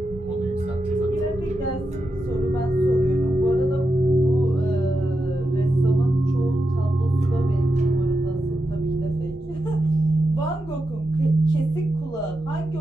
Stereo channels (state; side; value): normal; both; correlation 0.88